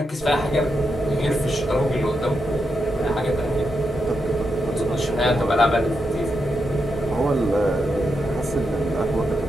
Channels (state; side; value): normal; both; correlation 0.85